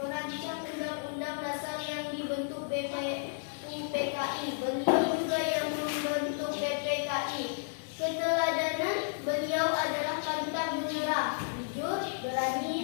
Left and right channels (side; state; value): right; silent; digital silence